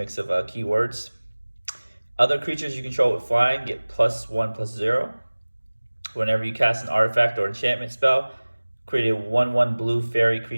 of keywords. Other creatures you control with Flying get +1/+0. Whenever you cast an artifact or enchantment spell, create a 1/1 blue fairy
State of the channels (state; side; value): inverted; both; correlation -1.00